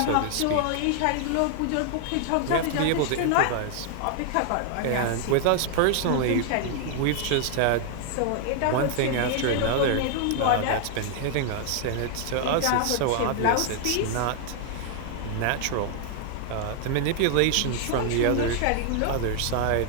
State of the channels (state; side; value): different; both; correlation 0.00